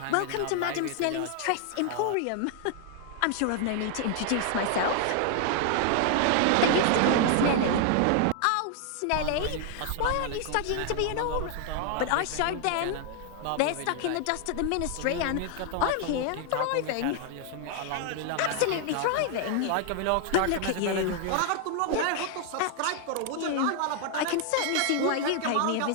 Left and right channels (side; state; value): both; different; correlation 0.00